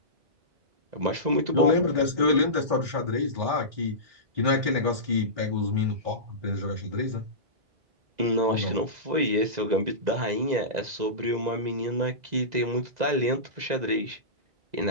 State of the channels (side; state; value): left; late; 2.0 ms